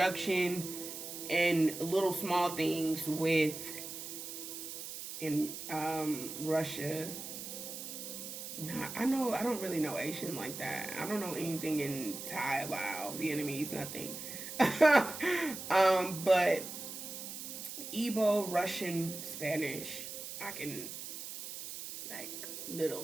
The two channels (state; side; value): noise; right; hiss, 8 dB below the sound